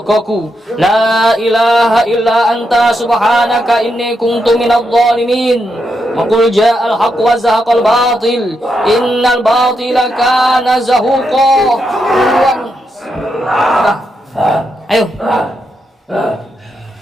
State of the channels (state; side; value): normal; both; correlation 0.83